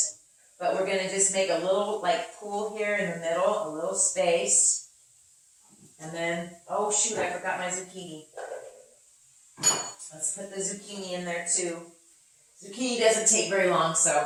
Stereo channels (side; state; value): both; identical; correlation 1.00